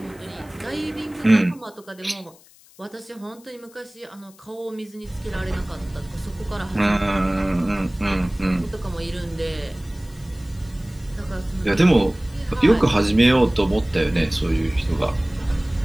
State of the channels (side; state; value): left; noise; hiss, 26 dB below the sound